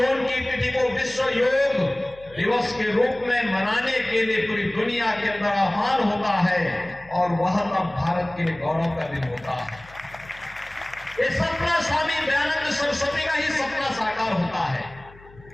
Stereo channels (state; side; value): noise; left; hum, 23 dB below the sound